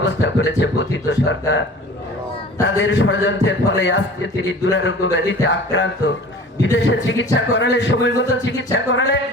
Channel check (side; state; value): both; normal; correlation 0.42